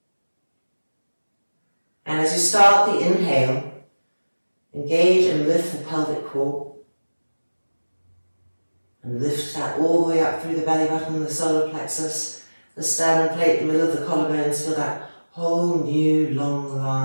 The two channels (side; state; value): both; inverted; correlation -1.00